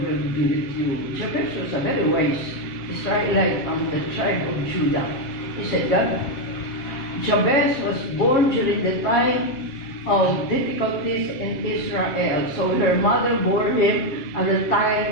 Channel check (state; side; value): late; right; 7.5 ms